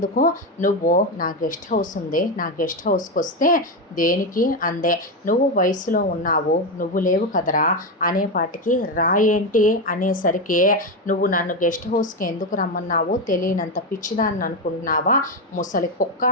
నువ్వు నా గెస్ట్ హౌస్ ఉంది, నా గెస్ట్ హౌస్కి వస్తే దేనికి అందే, నువ్వు వయసులో ఉన్నావు, నువ్వు లేవు కదరా అనేపాటికి, రా ఏంటి అనేసరికి, నువ్వు నన్ను గెస్ట్ హౌస్కి ఎందుకు రమ్మన్నావో తెలియనంత పిచ్చిదాన్ని అనుకుంటున్నావా, ముసలి కుక్క,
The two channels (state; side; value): normal; both; correlation 0.11